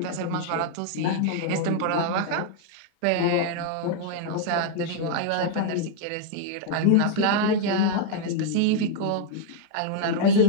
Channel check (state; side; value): different; both; correlation 0.00